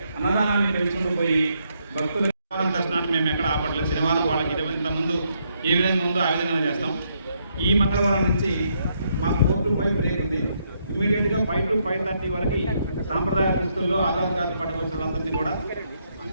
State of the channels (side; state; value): both; inverted; correlation -0.75